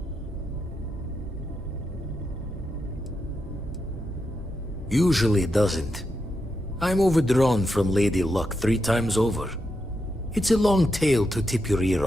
Usually it doesn't. I'm overdrawn from Lady Luck 3 times over. It's a long tale to tip your ear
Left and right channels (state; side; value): normal; both; correlation 0.85